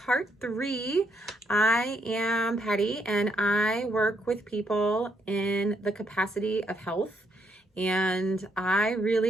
3. I am Patty and I work with people in the capacity of health. And I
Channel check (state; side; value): normal; both; correlation 0.74